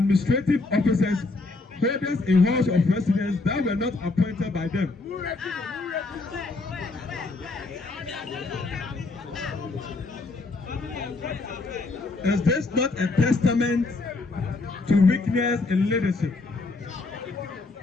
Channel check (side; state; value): right; quieter; 3.5 dB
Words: officers, holders in halls of residence that were not appointed by them? Is this not a testament to weakness in leadership?